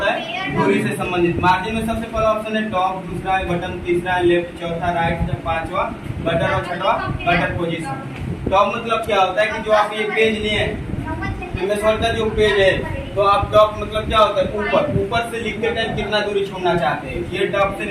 है, दूरी से संबंधित। मार्जिन में सबसे पहला ऑप्शन है टॉप, दूसरा है बटन, तीसरा है लेफ्ट, चौथा राइट, पांचवा बटन और छठवा गटर पोजीशन। टॉप मतलब क्या होता है कि जो आप ये पेज लिए हैं, का जो पेज है, तो आप टॉप मतलब क्या होता है, ऊपर से लिखते टाइम कितना दूरी छोड़ना चाहते हैं, ये टॉप से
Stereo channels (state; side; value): identical; both; correlation 1.00